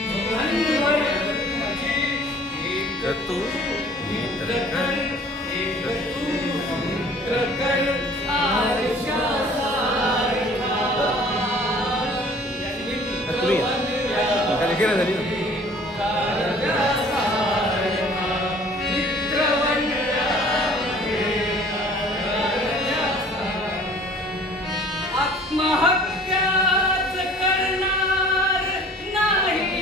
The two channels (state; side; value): normal; both; correlation 0.51